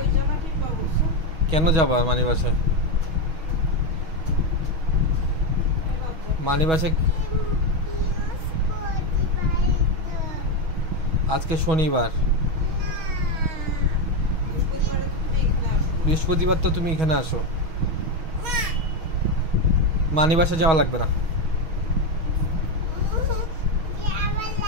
কেন যাবা মানি বাসায়? মানি বাসায় আজকে শনিবার, বৃহস্পতিবার তো তুমি এখানে আসো। মানি বাসা যাওয়া লাগবে না।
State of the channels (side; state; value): left; late; 6.2 ms